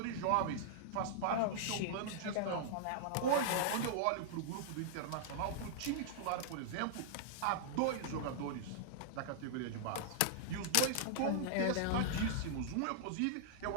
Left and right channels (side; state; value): both; different; correlation -0.01